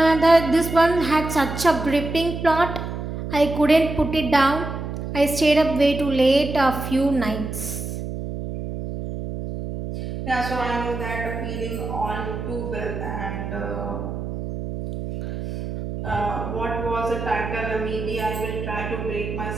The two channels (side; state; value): right; noise; hum, 6 dB below the sound